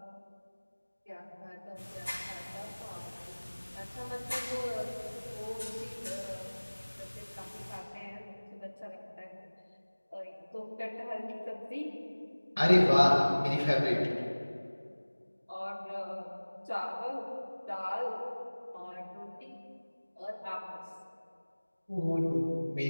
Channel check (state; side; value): inverted; both; correlation -1.00